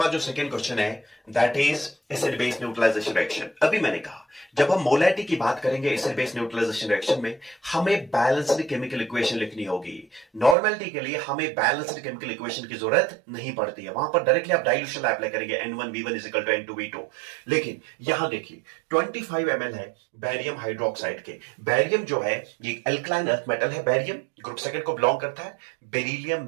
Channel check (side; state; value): left; drops out; at 10.6 s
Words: जो सेकंड क्वेश्चन है that is acid base neutralisation reaction. अभी मैंने कहा जब हम मोलैरिटी की बात करेंगे एसिड बेस न्यूट्रलाइजेशन रिएक्शन में हमें बैलेंस्ड केमिकल इक्वेशन लिखनी होगी। नॉर्मलिटी के लिए हमें बैलेंस्ड केमिकल इक्वेशन की जरूरत नहीं पड़ती है, वहां पर डायरेक्टली आप डाइल्यूशन अप्लाई करेंगे N1V1 N2V2। लेकिन यहां देखिए 25 ml है बैरियम हाइड्रोक्साइड के। बैरियम जो है ये एल्कलाइन अर्थ मेटल है, बैरियम ग्रुप सेकंड को बिलोंग करता है।